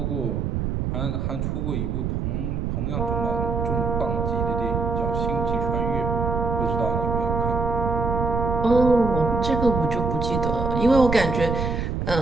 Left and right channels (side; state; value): right; noise; rumble, 1 dB below the sound